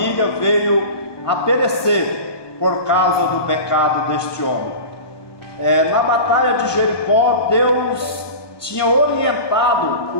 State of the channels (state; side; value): late; right; 1.2 ms